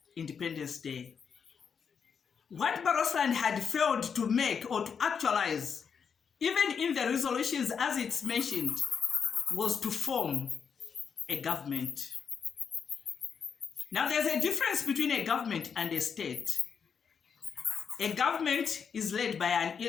Independence Day. What Barotseland had failed to make or to actualize, even in the resolutions as it's mentioned, was to form a government. Now there's a difference between a government and a state. A government is led by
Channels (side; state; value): right; quieter; 6.6 dB